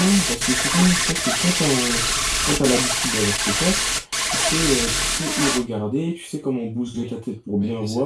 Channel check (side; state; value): both; identical; correlation 1.00